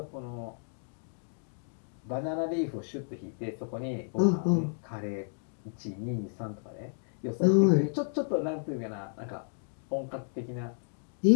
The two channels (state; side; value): silent; right; digital silence